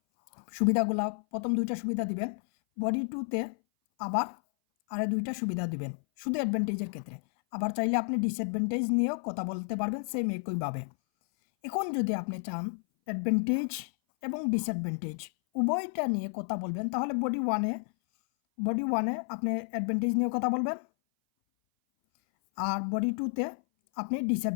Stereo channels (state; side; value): silent; right; 57 dB below the other